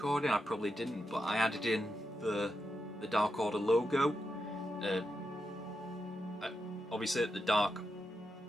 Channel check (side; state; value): both; normal; correlation 0.86